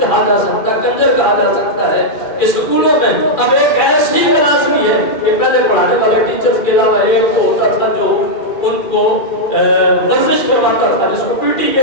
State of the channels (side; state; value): right; late; 2.4 ms